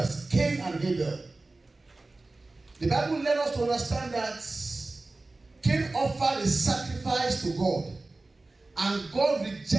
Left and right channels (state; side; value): quieter; left; 3.2 dB